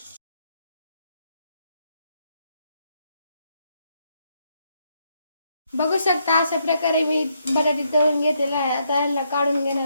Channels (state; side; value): inverted; both; correlation -0.76